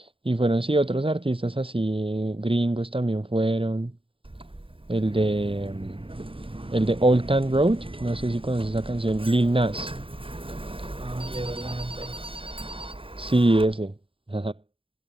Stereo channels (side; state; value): left; late; 0.26 ms